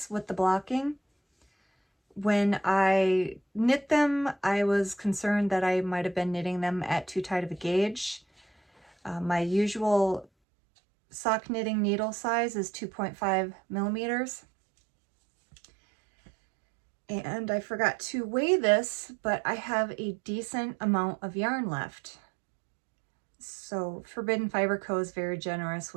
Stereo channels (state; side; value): drops out; left; at 10.2 s